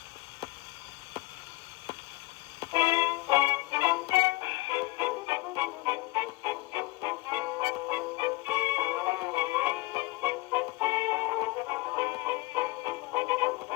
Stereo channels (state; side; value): quieter; right; 21.5 dB